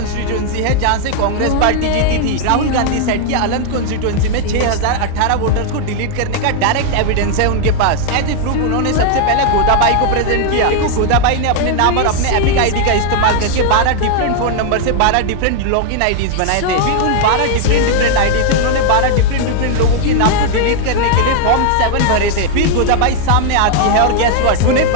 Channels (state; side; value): different; both; correlation 0.00